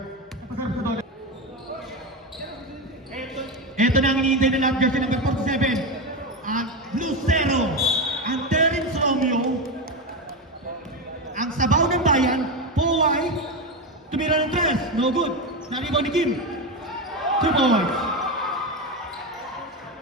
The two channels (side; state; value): both; normal; correlation 0.14